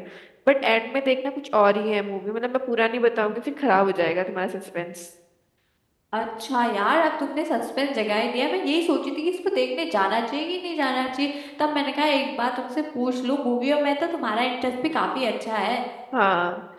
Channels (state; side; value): identical; both; correlation 1.00